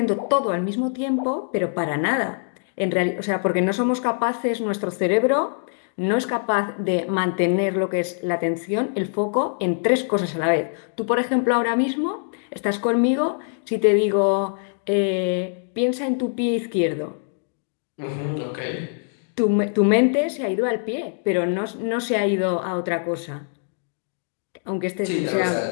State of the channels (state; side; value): silent; right; digital silence